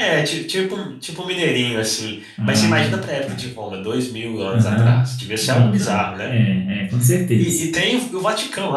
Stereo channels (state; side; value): identical; both; correlation 1.00